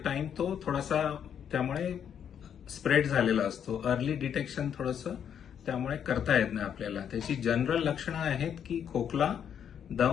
टाइम तो थोडासा त्यामुळे स्प्रेड झालेला असतो. अर्ली डिटेक्शन थोडंसं त्यामुळे करता येत नाही आपल्याला. त्याची जनरल लक्षणं आहेत की खोकला,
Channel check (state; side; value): quieter; right; 8.5 dB